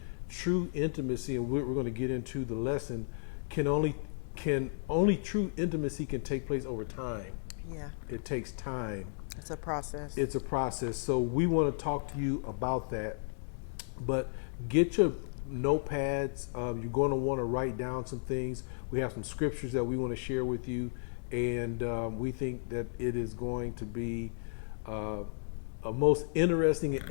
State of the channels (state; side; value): silent; right; digital silence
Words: true intimacy, and we're going to get into the lesson, only true intimacy can take place over time. Yeah. It takes time. It's a process. It's a process. So we want to talk to you about that. But get your notepads. You're going to want to write down some things. We have some scriptures that we want to share with you. And we think that it is going to be a most interesting and